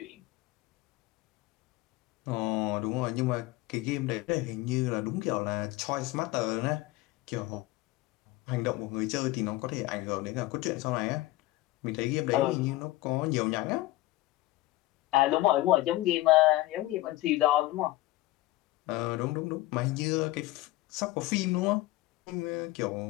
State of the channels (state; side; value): quieter; right; 18.3 dB